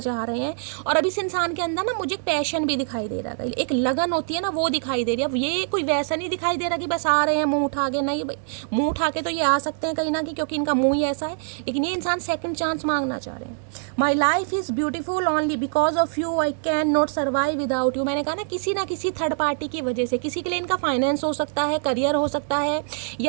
रहे हैं। और अब इस इंसान के अंदर ना मुझे पैशन भी दिखाई दे रहा है, एक लगन होती है ना, वो दिखाई दे रही है। अब ये कोई वैसा नहीं दिखाई दे रहा कि बस आ रहे हैं मुंह उठा के, नहीं भाई, मुंह उठा के तो ये आ सकते हैं कहीं ना कहीं, क्योंकि इनका मुंह ही ऐसा है, लेकिन ये इंसान सेकंड चांस मांगना चाह रहे हैं। My life is beautiful only because of you, I can not survive without you. मैंने कहा ना किसी थर्ड पार्टी की वजह से, किसी के लिए इनका फाइनेंस हो सकता है, करियर हो सकता है,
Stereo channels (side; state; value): left; silent; digital silence